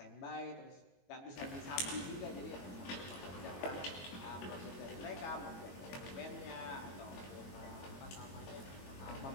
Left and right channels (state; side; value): late; right; 21 ms